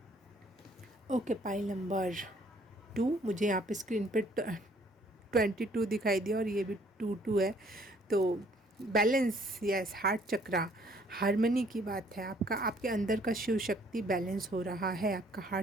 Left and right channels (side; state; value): both; normal; correlation 0.61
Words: ओके, पाइल नंबर 2, मुझे यहाँ पे स्क्रीन पे 22 दिखाई दिया और ये भी 22 है। तो बैलेंस, यस, हार्ट चक्रा, हार्मनी की बात है। आपके अंदर का शिव शक्ति बैलेंस हो रहा है, आपका